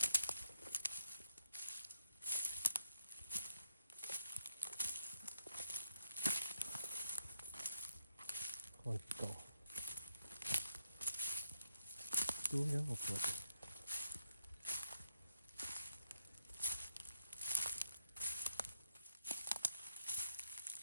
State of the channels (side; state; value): both; inverted; correlation -0.78